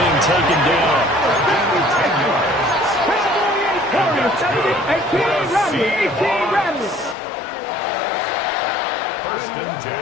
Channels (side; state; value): right; drops out; at 7.2 s